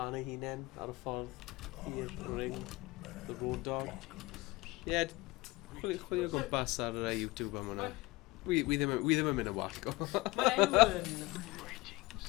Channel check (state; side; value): quieter; right; 21.9 dB